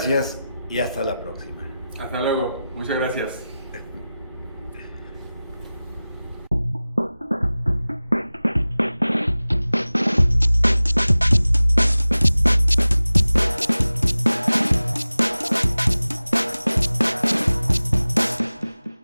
y hasta la próxima. Hasta luego, muchas gracias.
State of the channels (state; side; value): inverted; both; correlation -0.96